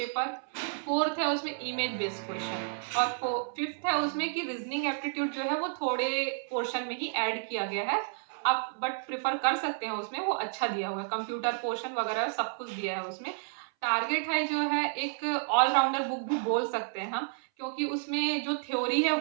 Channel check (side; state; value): left; silent; 57 dB below the other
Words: Fourth है उसमें इमेज बेस्ड क्वेश्चन और फिफ्थ है उसमें कि रीजनिंग एप्टीट्यूड जो है वो थोड़े पोर्शन में ही ऐड किया गया है। आप बट प्रेफर कर सकते हैं, उसमें वो अच्छा दिया हुआ है, कंप्यूटर पोर्शन वगैरह सब कुछ दिया है उसमें। टारगेट है जो है एक ऑलराउंडर बुक भी बोल सकते हैं हम, क्योंकि उसमें जो थ्योरी है